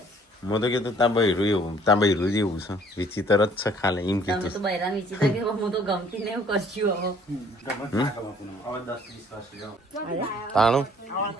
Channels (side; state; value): both; normal; correlation 0.58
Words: મેં તો કીધું ત્યાં બૈરું એવું ત્યાં બૈરું જેવું છે વિચિત્ર જ છે ખાલે એમ તમે કીધું તો બૈરાન વિચિત્ર કે હું તો ગમતી ને એવું કરશું તાણું